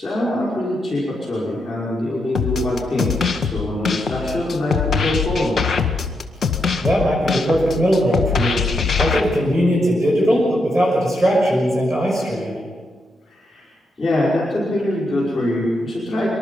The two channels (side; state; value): both; normal; correlation 0.81